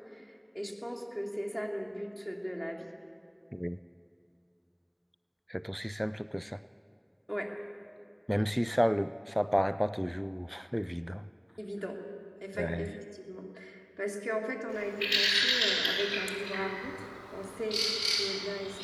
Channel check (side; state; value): both; identical; correlation 1.00